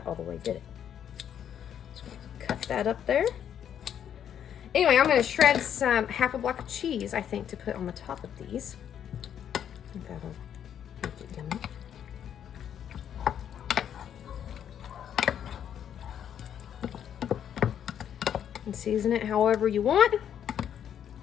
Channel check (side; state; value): right; quieter; 9.3 dB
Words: all the way, did it? So cut that up there. Anyway, I'm gonna shred half a block of cheese, I think, to put on the top of these. I think that'll make it yummy. And season it however you want.